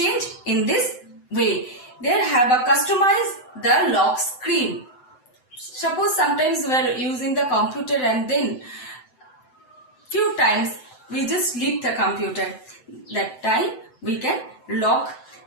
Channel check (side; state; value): right; late; 7.9 ms